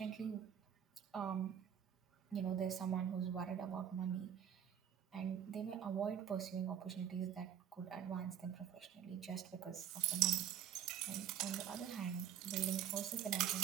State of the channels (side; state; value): left; quieter; 9.4 dB